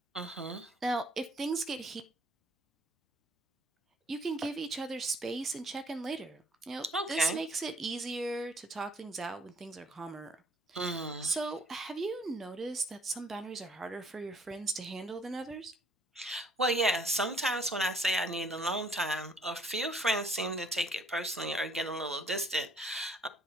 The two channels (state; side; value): normal; both; correlation 0.62